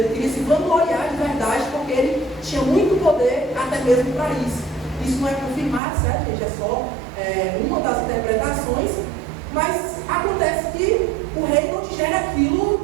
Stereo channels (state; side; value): drops out; left; at 5.8 s